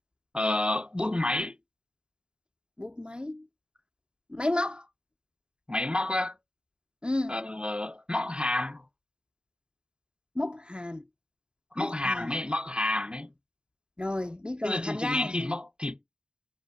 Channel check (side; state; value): left; late; 0.048 ms